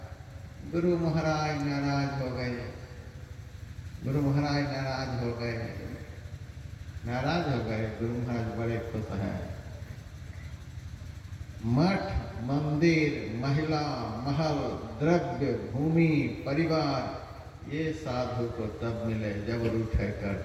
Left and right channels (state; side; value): identical; both; correlation 1.00